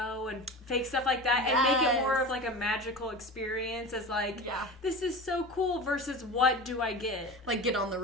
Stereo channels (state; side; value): normal; both; correlation 0.31